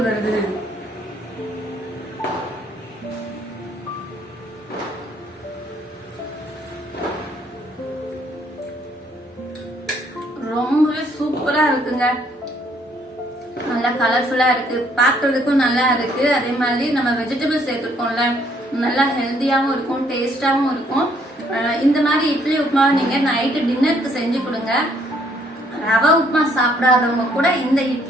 வருது. ரொம்பவே சூப்பரா இருக்குங்க. நல்லா கலர்ஃபுல்லா இருக்கு, பாக்குறதுக்கும் நல்லா இருக்கு. அதே மாதிரி நம்ம வெஜிடபிள் சேர்த்துருக்கோம்ல, நல்லா ஹெல்த்தியாவும் இருக்கும், டேஸ்டாவும் இருக்கும். இந்த மாதிரி இட்லி உப்புமாவை நீங்க நைட்டு டின்னருக்கு செஞ்சு கொடுங்க. ரவை உப்புமா சாப்பிடாதவங்க கூட இந்த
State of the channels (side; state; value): both; normal; correlation 0.66